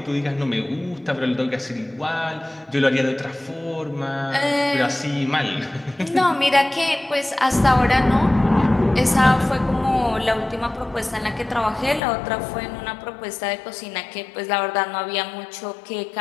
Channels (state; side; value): drops out; right; at 12.0 s